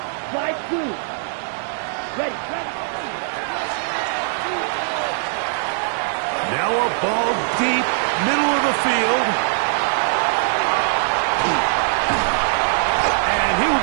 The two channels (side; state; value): left; silent; 65 dB below the other